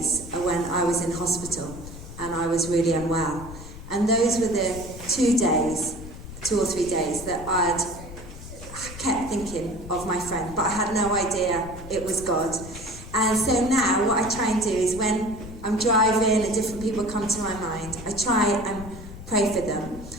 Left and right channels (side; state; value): left; noise; rumble, 13 dB below the sound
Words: when I was in hospital and I was really unwell. And those were the 2 or 3 days that I'd kept thinking of my friend, but I had no idea it was God. And so now what I try and do is when I'm driving and different people come to my mind, I try and pray for them.